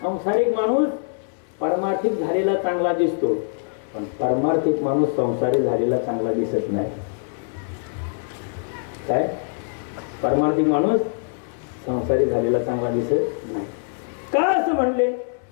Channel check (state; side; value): silent; right; digital silence